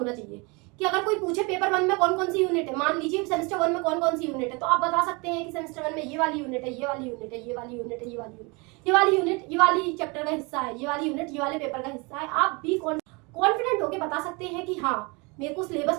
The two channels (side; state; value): left; quieter; 28.5 dB